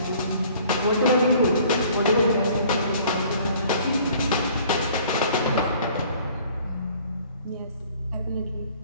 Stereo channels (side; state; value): both; inverted; correlation -0.54